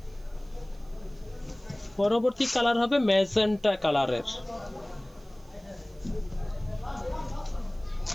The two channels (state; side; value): noise; right; hiss, 30 dB below the sound